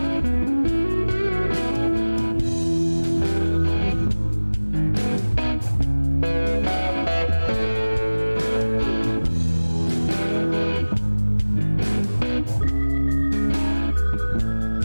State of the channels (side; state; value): both; inverted; correlation -1.00